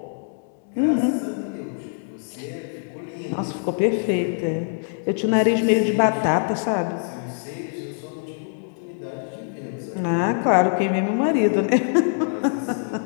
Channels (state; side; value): silent; right; digital silence